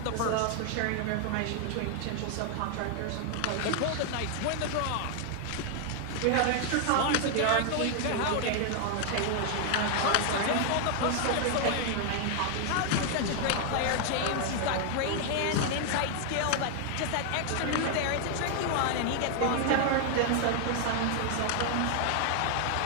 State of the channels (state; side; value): different; both; correlation 0.00